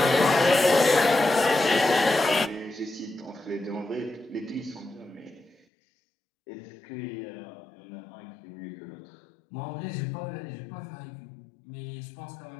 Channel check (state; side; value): drops out; right; at 5.6 s